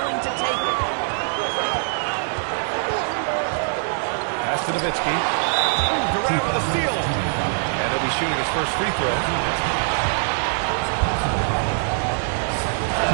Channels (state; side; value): silent; left; digital silence